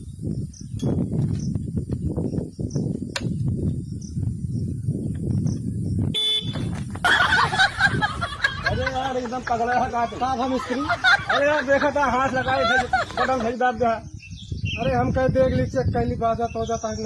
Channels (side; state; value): both; identical; correlation 1.00